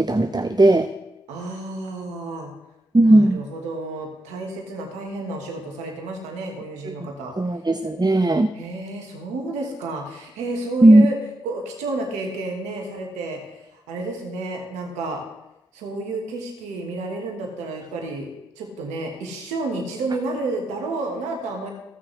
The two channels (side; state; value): both; normal; correlation 0.86